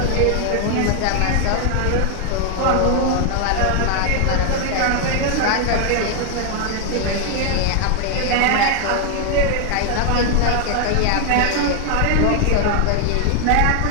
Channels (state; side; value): different; both; correlation 0.00